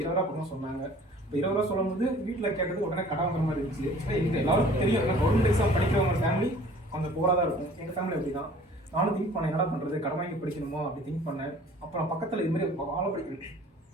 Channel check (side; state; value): both; normal; correlation 0.50